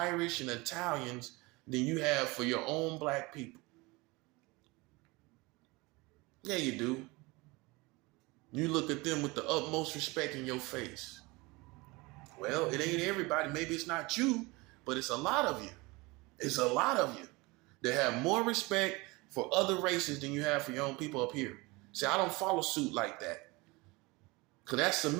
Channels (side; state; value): left; quieter; 24.1 dB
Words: and Italians than you have for your own black people. Yeah, you do. You look at them with the utmost respect in your face. Well, it ain't everybody. Maybe it's not you, but it's a lot of you. It's a lot of you that have more respect for other races than you have for your own people up here. See, I don't follow suit like that. Because that's